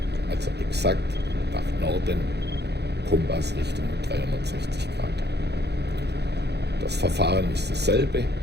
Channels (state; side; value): late; left; 0.49 ms